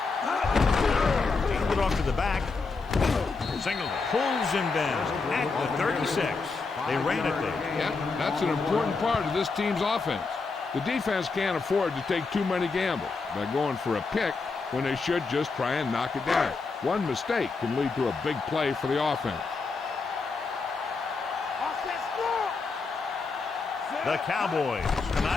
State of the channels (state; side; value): quieter; right; 4.3 dB